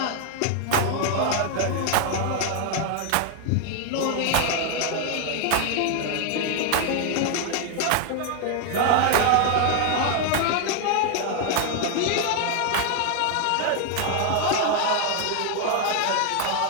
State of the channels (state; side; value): different; both; correlation 0.00